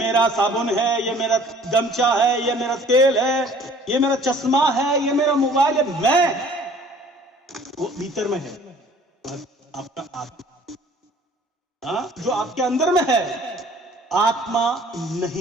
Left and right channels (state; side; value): normal; both; correlation 0.52